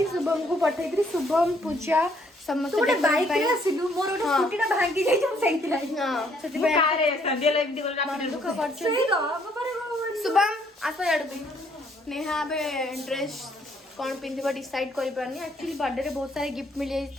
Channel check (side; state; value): both; normal; correlation 0.66